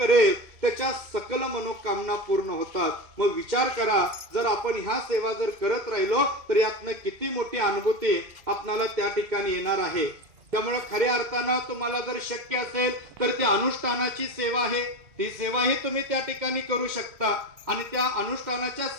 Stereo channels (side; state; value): left; late; 2.1 ms